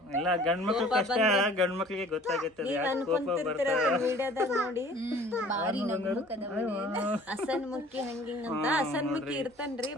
ಎಲ್ಲ ಗಂಡ್ಮಕ್ಳು ಕಷ್ಟ, ಗಂಡ್ಮಕ್ಳಿಗೆ ಗೊತ್ತಾಗುತ್ತೆ ಕೋಪ ವಿಡಿಯೋದಾಗ ನೋಡಿ. ಬಾರಿ ಹಸನ್ ಮುಖಿ ಹಂಗಿಂಗ್ ಅಂತ. ಹಸನ್ ಮುಖಿ ಇರ್ತಾನ್ರಿ,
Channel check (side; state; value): both; normal; correlation 0.50